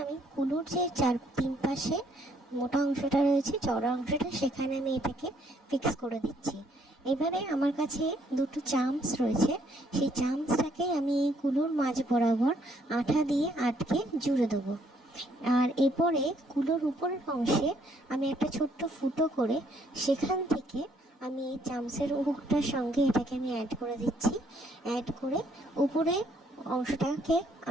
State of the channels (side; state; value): both; normal; correlation 0.68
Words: আমি কুলোর যে তিন পাশে মোটা অংশটা রয়েছে, চওড়া অংশটা, সেখানে আমি এটাকে ফিক্স করে দিচ্ছি। এবারে আমার কাছে দুটো চামচ রয়েছে, সেই চামচটাকে আমি এই কুলোর মাঝ বরাবর আঠা দিয়ে আটকে জুড়ে দেবো। আর এরপরে কুলোর উপরের অংশে আমি একটা ছোট্ট ফুটো করে সেখান থেকে আমি এই চামচের হুকটার সঙ্গে এটাকে আমি অ্যাড করে দিচ্ছি। অ্যাড করে উপরে অংশটাকে